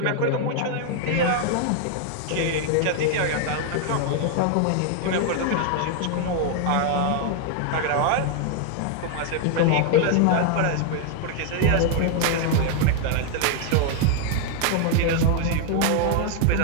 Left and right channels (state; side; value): different; both; correlation 0.00